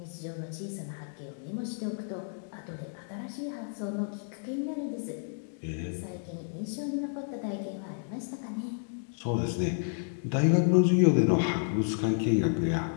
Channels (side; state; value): right; silent; digital silence